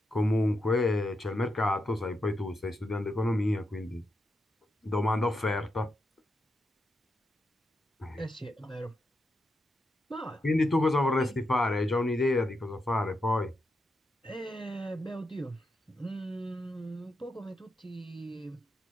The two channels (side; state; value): both; normal; correlation 0.85